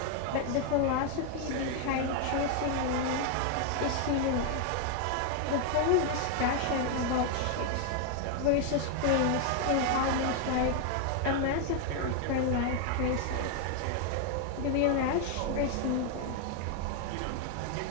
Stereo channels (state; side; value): different; both; correlation 0.00